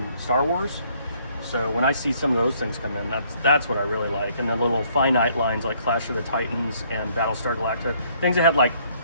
Star Wars. So when I see some of those things come in, that's what I really like. And the little finite lines like Clash of the Titans and Battlestar Galactica, things that had like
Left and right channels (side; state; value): both; inverted; correlation -0.65